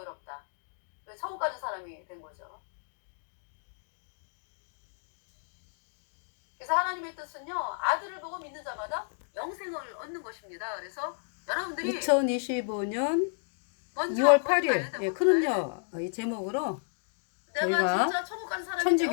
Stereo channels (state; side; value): silent; right; digital silence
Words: 천국 가는 사람이 된 거죠. 그래서 하나님의 뜻은요, 아들을 보고 믿는 자마다 영생을 얻는 것입니다. 그래서 여러분들이 2025년 먼저 2월 거기 가야 8일 돼, 예, 거기 가야 돼. 크름녀 이 제목으로 내가 저희가 진짜 천국 간 사람이 천주교